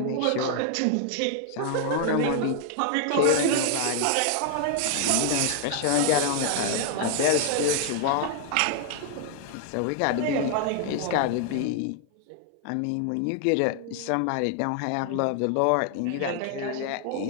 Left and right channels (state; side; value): different; both; correlation 0.00